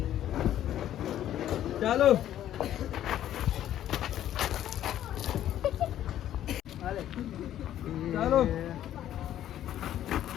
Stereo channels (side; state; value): right; quieter; 11.8 dB